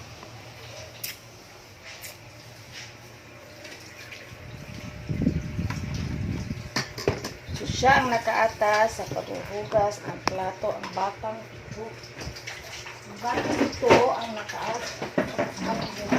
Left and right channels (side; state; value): both; identical; correlation 1.00